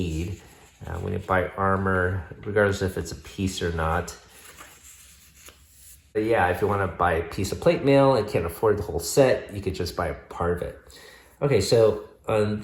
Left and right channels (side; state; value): both; identical; correlation 1.00